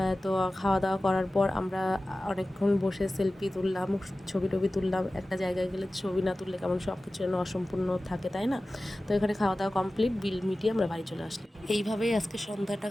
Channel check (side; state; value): both; normal; correlation 0.96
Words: তো খাওয়া দাওয়া করার পর আমরা অনেকক্ষণ বসে সেলফি তুললাম, ছবি টবি তুললাম। একটা জায়গায় গেলে ছবি না তুললে কেমন সব কিছু যেন অসম্পূর্ণ থাকে, তাই না? তো এখানে খাওয়া দাওয়া কমপ্লিট, বিল মিটিয়ে আমরা বাড়ি চলে আসলাম। এইভাবেই আজকে সন্ধ্যাটা